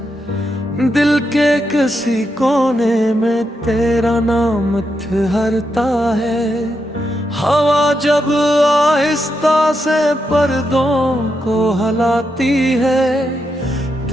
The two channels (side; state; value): both; normal; correlation 0.83